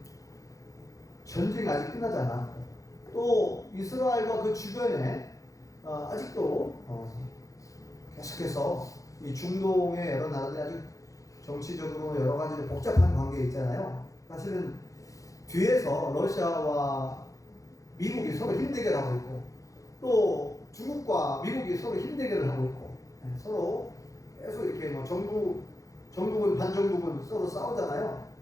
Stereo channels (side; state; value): right; late; 0.16 ms